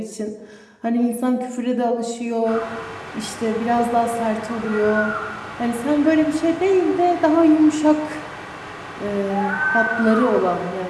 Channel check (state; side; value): identical; both; correlation 1.00